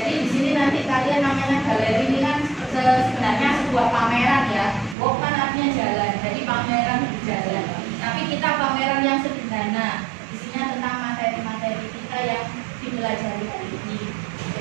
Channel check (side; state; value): left; drops out; at 5.0 s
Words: di sini nanti kalian namanya galeri ini kan sebenarnya sebuah pameran ya. Walk kan artinya jalan. Jadi pameran jalan. Tapi kita pameran yang sederhana. Isinya tentang materi-materi kita yang dipelajari hari ini.